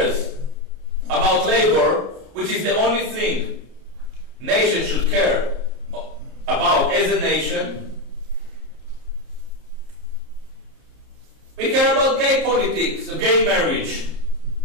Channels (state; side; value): late; left; 30 ms